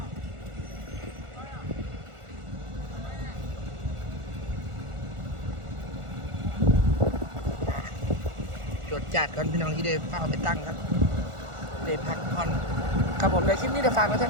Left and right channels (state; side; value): late; left; 1.4 ms